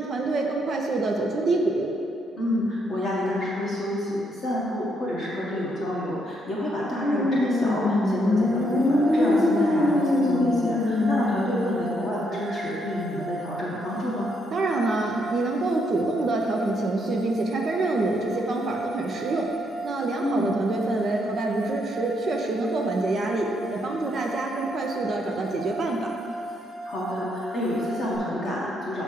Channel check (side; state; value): both; normal; correlation 0.75